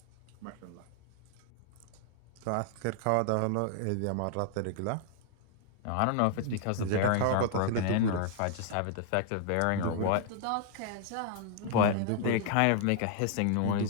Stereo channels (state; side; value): different; both; correlation 0.00